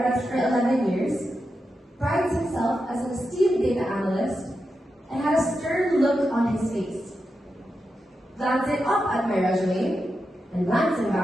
for 11 years, prides himself as an esteemed data analyst, and had a stern look on his face. Glancing up at my resume, and glancing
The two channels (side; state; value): both; normal; correlation 0.88